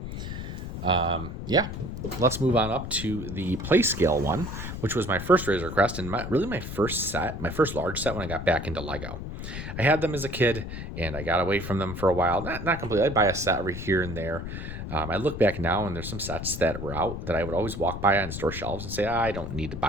Yeah, let's move on up to the play scale one, which was my first Razorcrest and my first large set when I got back into Lego. I had them as a kid and I got away from them for a while. Not completely. I'd buy a set every here and there. I look back now and there's some sets that were out that I would always walk by on store shelves and say, I don't need to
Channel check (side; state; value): left; noise; rumble, 7 dB below the sound